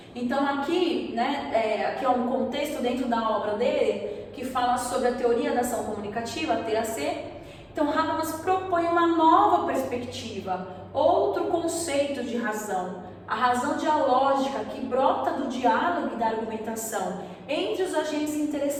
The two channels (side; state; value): both; identical; correlation 1.00